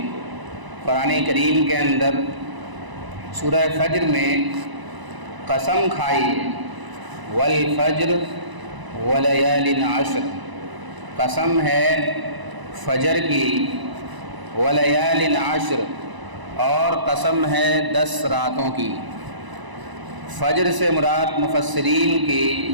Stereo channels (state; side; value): late; left; 1.0 ms